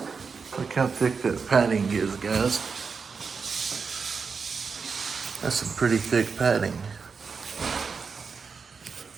Look how thick that padding is, guys. That's some pretty thick padding.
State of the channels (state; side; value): quieter; left; 5.3 dB